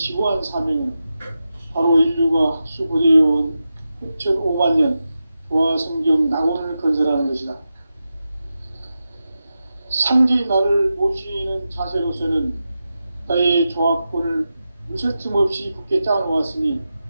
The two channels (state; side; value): inverted; both; correlation -0.91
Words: 사명은 바로 인류가 학수고대해온 9,500만 년 조화성경 낙원을 건설하는 것이다. 상제인 나를 모시는 자세로서는 나의 조합권을 무쇠틈 없이 굳게 짜놓았으니